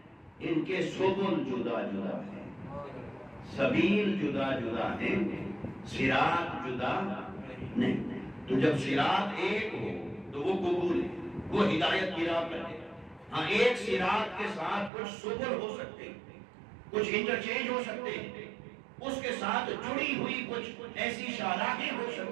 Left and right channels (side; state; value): left; drops out; at 14.9 s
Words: ان کے سبل جدا جدا ہیں، سبیل جدا جدا ہیں، صراط جدا نہیں۔ تو جب صراط ایک ہو تو وہ قبول ہے، وہ ہدایت کی راہ پر ہے۔ ہاں ایک صراط کے ساتھ کچھ سبل ہو سکتے ہیں، کچھ انٹرچینج ہو سکتے ہیں، اس کے ساتھ جڑی ہوئی کچھ ایسی شاہراہیں ہو